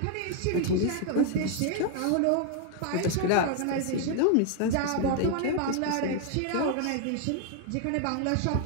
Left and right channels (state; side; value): different; both; correlation 0.00